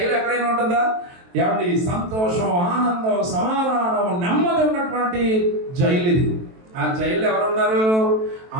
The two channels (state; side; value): late; left; 23 ms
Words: ఎక్కడైనా ఉంటుందా? ఎలాంటి సంతోషం, ఆనందం, సమాధానం, నెమ్మది ఉన్నటువంటి జైలు ఇది. ఆ జైల్లో ఎవరున్నారు?